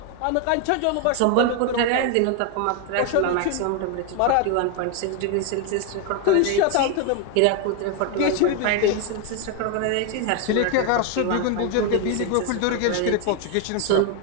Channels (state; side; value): different; both; correlation 0.01